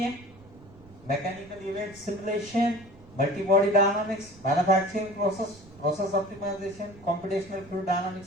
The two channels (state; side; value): noise; right; rumble, 22 dB below the sound